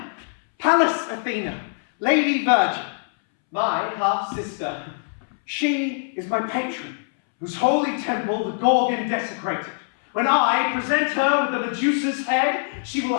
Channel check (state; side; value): silent; right; 63 dB below the other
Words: Pallas Athena, Lady Virgin, my half-sister. She is my patron, whose holy temple the Gorgon desecrated. When I present her with the Medusa's head, she will